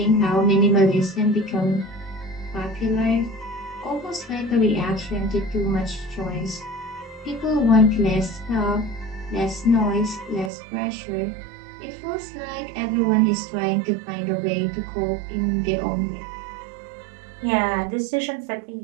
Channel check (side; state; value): left; drops out; at 10.5 s